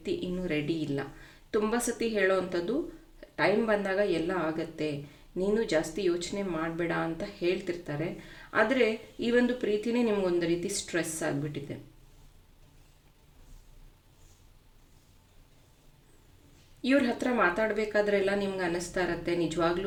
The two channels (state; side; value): identical; both; correlation 1.00